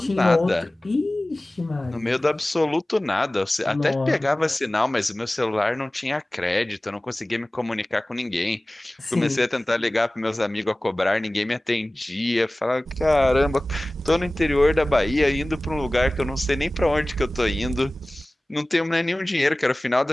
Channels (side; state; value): both; normal; correlation 0.98